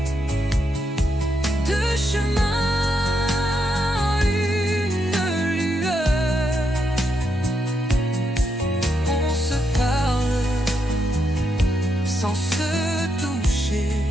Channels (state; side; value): normal; both; correlation 0.81